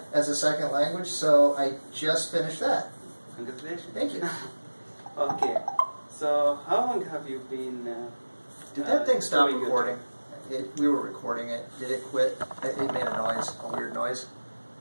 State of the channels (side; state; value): both; inverted; correlation -1.00